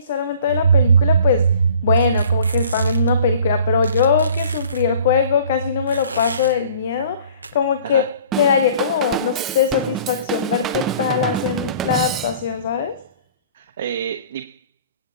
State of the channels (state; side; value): inverted; both; correlation -0.51